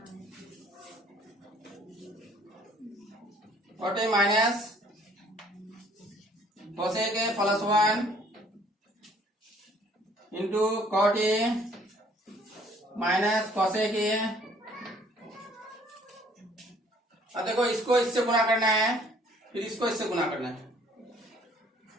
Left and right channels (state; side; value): normal; both; correlation 0.59